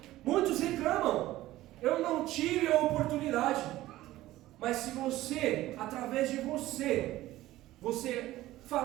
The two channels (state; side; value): quieter; left; 15.9 dB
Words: Muitos reclamam, eu não tive a oportunidade. Mas se você, através de você